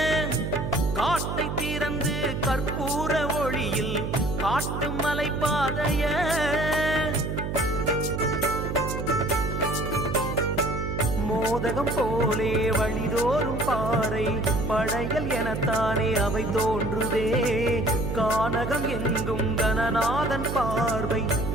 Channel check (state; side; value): noise; right; hum, 3 dB below the sound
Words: காட்டை திறந்து கற்பூர ஒளியில் காட்டும் மலை பாதைய மோதகம் போலே வழிதோறும் பாறை படையல் எனத்தானே அவை தோன்றுதே கானகம் எங்கும் கணநாதன் பார்வை